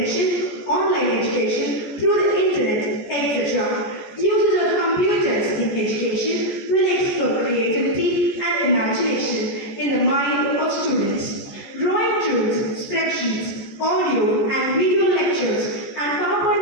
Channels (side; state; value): right; late; 14 ms